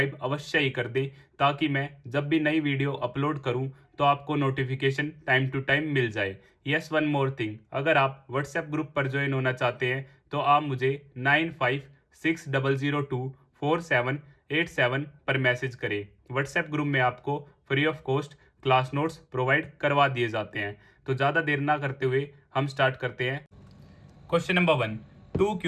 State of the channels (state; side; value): identical; both; correlation 1.00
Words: अवश्य ही कर दें, ताकि मैं जब भी नई वीडियो अपलोड करूं तो आपको नोटिफिकेशन टाइम टू टाइम मिल जाए। यस, वन मोर थिंग, अगर आप व्हाट्सएप ग्रुप पर ज्वाइन होना चाहते हैं तो आप मुझे 9560024787 पर मैसेज करें। व्हाट्सएप ग्रुप में आपको free of cost class notes provide करवा दिए जाते हैं। तो ज़्यादा देर ना करते हुए हम स्टार्ट करते हैं। Question number 1, two